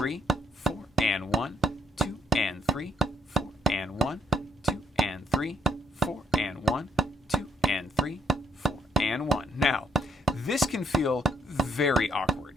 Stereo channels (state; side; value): normal; both; correlation 0.72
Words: 4, and 1, 2, and 3, 4, and 1, 2, and 3, 4, and 1, 2, and 3, 4, and 1. Now, this can feel very awkward.